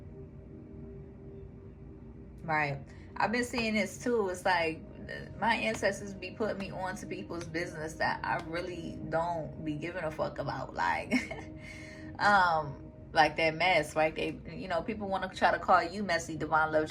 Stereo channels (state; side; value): identical; both; correlation 1.00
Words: Right. I've been seeing this too. It's like my ancestors be putting me on to people's business that I really don't be giving a fuck about. Like that mess, right? They, you know, people want to try to call you messy, divine love